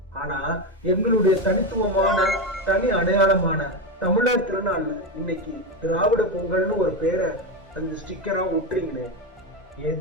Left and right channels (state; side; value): normal; both; correlation 0.13